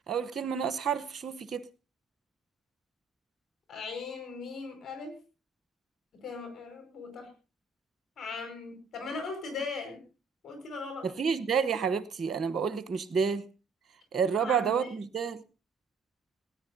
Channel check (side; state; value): left; quieter; 4.8 dB